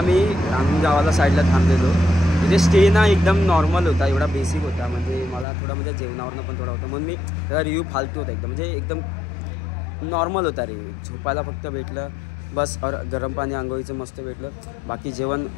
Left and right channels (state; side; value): drops out; right; at 5.5 s